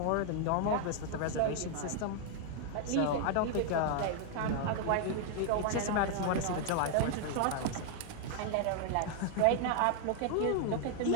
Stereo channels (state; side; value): different; both; correlation 0.00